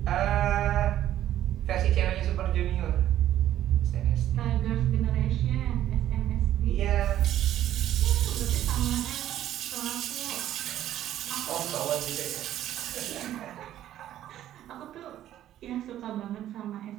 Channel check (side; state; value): left; quieter; 12.3 dB